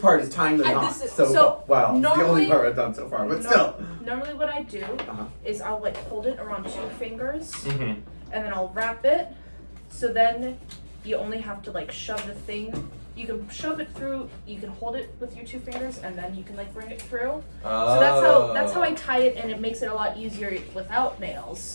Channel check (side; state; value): both; inverted; correlation -1.00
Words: part, is tying the And knot. this is- So, so wow, it's the only normally- part I've done so far, but still. Normally, what I do Uh-huh. is I'll like hold it around 2 fingers, Mhm. and then I'll wrap it. So then you only have to like shove the thing. You can shove it through. You can hold it with your 2 fingers, and then you can like bring it through. So that's how I tie it, and it makes it a lot easier without